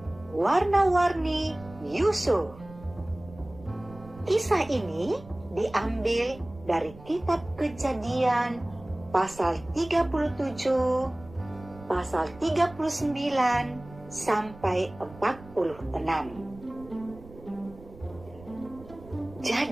Warna-Warni Yusuf. Kisah ini diambil dari kitab Kejadian pasal 37, pasal 39 sampai 46.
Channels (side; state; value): right; noise; rumble, 19 dB below the sound